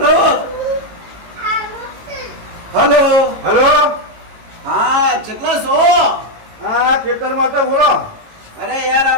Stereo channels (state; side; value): late; left; 18 ms